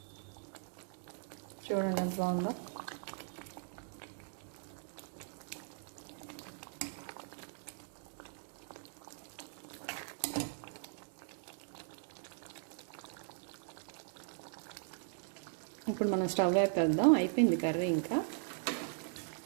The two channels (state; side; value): silent; left; digital silence